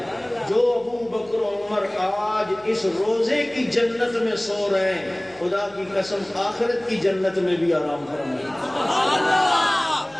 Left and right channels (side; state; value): left; noise; hum, 29 dB below the sound